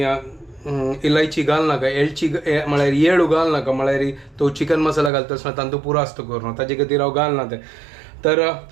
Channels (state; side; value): drops out; left; at 5.1 s